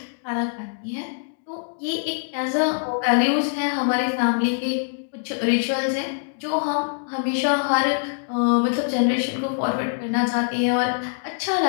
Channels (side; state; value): right; silent; digital silence